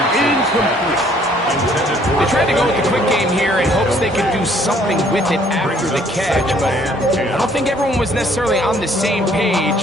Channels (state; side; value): normal; both; correlation 0.61